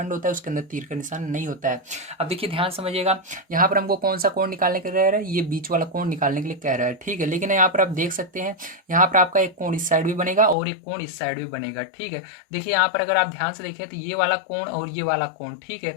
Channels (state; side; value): drops out; right; at 10.6 s